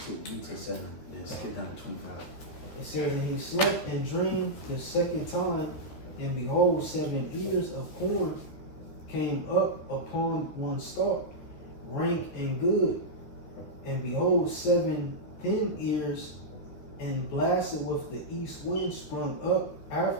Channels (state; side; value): late; right; 13 ms